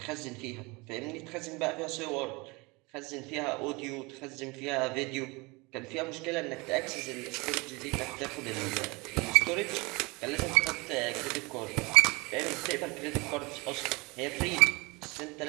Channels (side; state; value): left; quieter; 25.7 dB